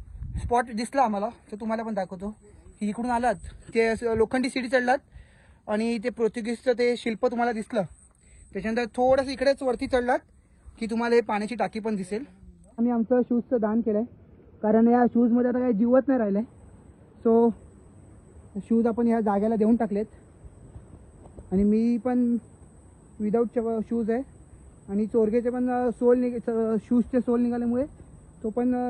स्पॉट दिसला आम्हाला. तर तुम्हाला पण दाखवतो की इकडून आलात ते लोखंडी सीडी चढलात आणि ते पोर्तुगीजचं ते शिल्प तुम्हाला दिसलं. त्याच्यानंतर थोडंसं इकडेच वरती चढलात की तुम्हाला हे पाण्याची टाकी पण दिसेल. आम्ही आमचं शूजचं दान केलं आहे कारण या शूजमध्ये आता काही जीवच नाही राहिलं आहे. सो शूज आपण या जागेला देऊन टाकलेत. आणि मी पण विदाऊट शूज आहे. आणि चोरगेचे पण शूजचे सोल निघाल्यामुळे तो पण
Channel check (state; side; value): identical; both; correlation 1.00